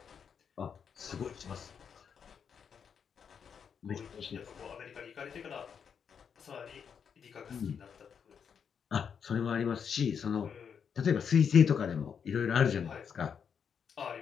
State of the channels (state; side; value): quieter; right; 7.1 dB